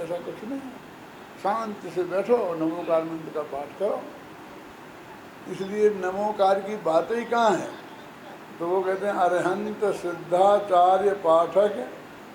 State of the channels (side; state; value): both; identical; correlation 1.00